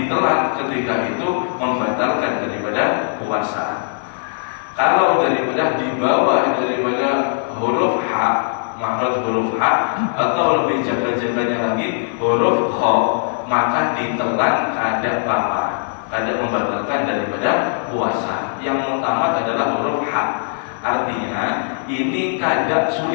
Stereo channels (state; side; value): silent; right; digital silence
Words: ketika itu membatalkan daripada puasa. Kalau daripada di bawah daripada huruf H, makhraj huruf H, atau lebih jaga-jaganya lagi huruf Kha, maka ditelan kada apa, kada membatalkan daripada puasa. Yang utama adalah huruf H. Artinya ini kada